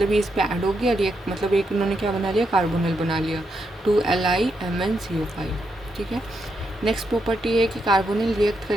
ये इस पे ऐड हो गया रिएक्ट, मतलब एक इन्होंने क्या बना लिया, कार्बोनिल बना लिया, 2LiMnCO5। ठीक है। नेक्स्ट प्रॉपर्टी है कि कार्बोनिल रिएक्ट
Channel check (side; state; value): both; normal; correlation 0.81